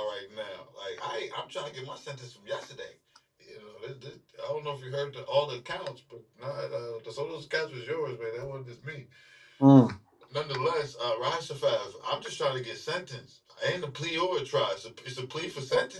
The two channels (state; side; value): identical; both; correlation 1.00